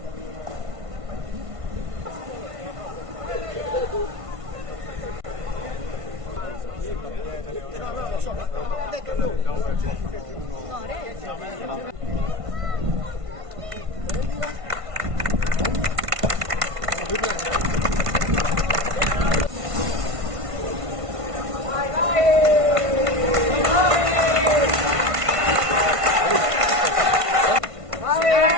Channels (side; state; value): left; late; 1.5 ms